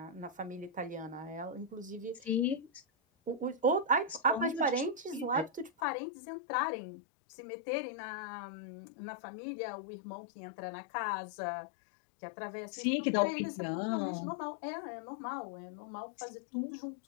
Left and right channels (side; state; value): right; drops out; at 5.8 s